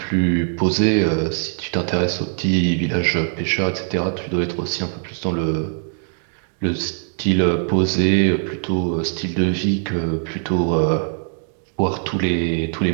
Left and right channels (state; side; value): silent; left; 57 dB below the other